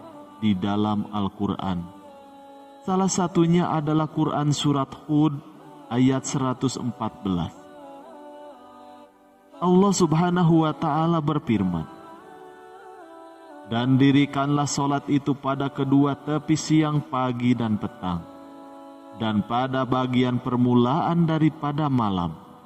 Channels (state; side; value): identical; both; correlation 1.00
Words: di dalam Al-Quran. Salah satunya adalah Quran Surat Hud ayat 114. Allah Subhanahu wa Ta'ala berfirman, "Dan dirikanlah salat itu pada kedua tepi siang, pagi, dan petang, dan pada bagian permulaan daripada malam.